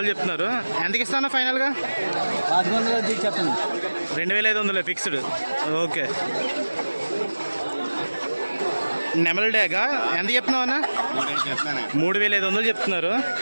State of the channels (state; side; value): inverted; both; correlation -1.00